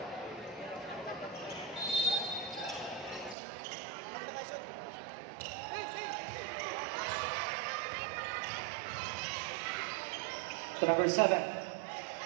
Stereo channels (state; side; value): drops out; left; at 3.4 s